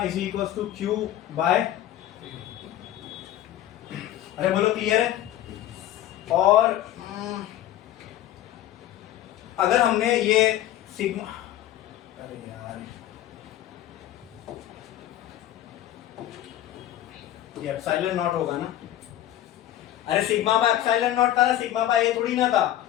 is equal to Q by, अरे बोलो क्लियर है? और अगर हमने ये सिग्मा, अरे यार ये एप्सिलॉन नॉट होगा ना, अरे सिग्मा बाय एप्सिलॉन नॉट था ना, सिग्मा बाय ए थोड़ी ना था।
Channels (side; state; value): right; quieter; 12.8 dB